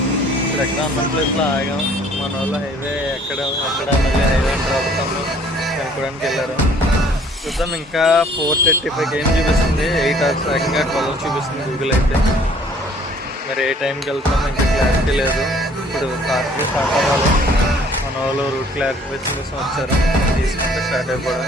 ఇక్కడ ఎక్కడ అన్న ప్లేస్లో ఆగాం. మన వాళ్ళు హైవే ఎక్కడ మళ్ళీ హైవే రాబోతాము కనుక్కోవడానికి వెళ్ళారు. చూద్దాం. ఇంకా 4:35 ఏం చూపిస్తుంది, 8 hours ఏకంగా 12 చూపిస్తుంది గూగుల్ అయితే. మరి ఏ టైంకి వెళ్తామో ఇంకా క్లారిటీ లేదు. ఇప్పుడు స్టార్ట్ అవ్వాలి. మన వాళ్ళు రూట్ క్లారిఫికేషన్ కోసం వచ్చారు, తీసుకుంటే స్టార్ట్ అయిపోవడం.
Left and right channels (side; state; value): both; normal; correlation 0.57